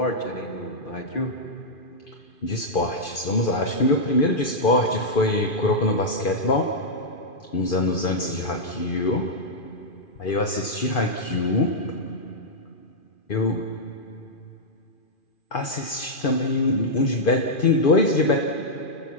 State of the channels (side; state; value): right; late; 2.4 ms